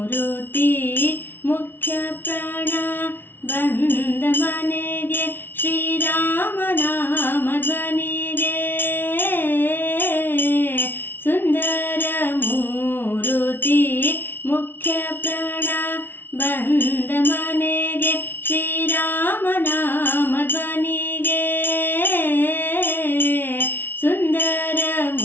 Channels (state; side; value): late; right; 0.10 ms